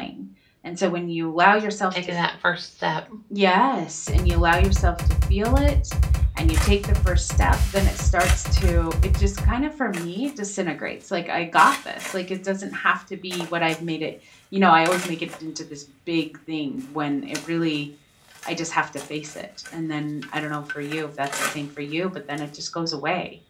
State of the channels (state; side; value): identical; both; correlation 1.00